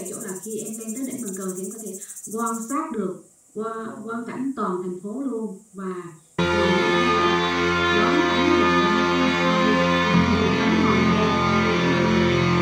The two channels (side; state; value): both; identical; correlation 1.00